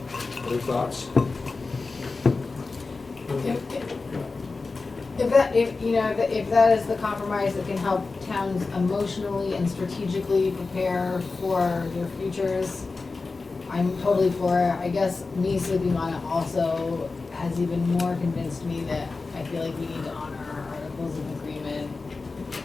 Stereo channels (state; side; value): quieter; right; 3.9 dB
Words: Other thoughts? If that is the compromise that can help towns emotionally and strategically prepare for their futures, I'm totally for it. I guess me sleeping on it also has even more convinced me that I feel like we need to honor our articles of agreement.